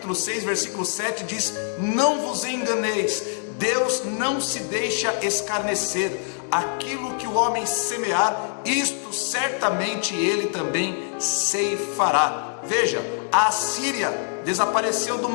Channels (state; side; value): silent; right; 59 dB below the other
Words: 6, versículo 7 diz: não vos enganeis, Deus não se deixa escarnecer. Aquilo que o homem semear, isto certamente ele também ceifará. Veja, a Assíria desapareceu do